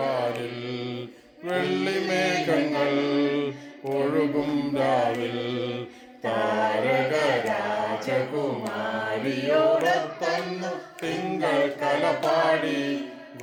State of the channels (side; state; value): both; identical; correlation 1.00